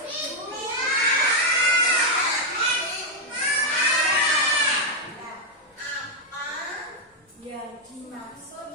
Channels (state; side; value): normal; both; correlation -0.01